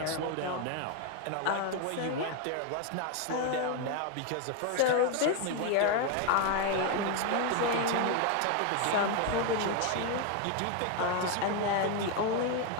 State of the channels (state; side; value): different; both; correlation 0.01